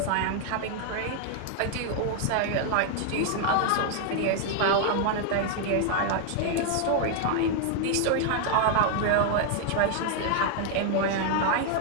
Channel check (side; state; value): both; different; correlation 0.00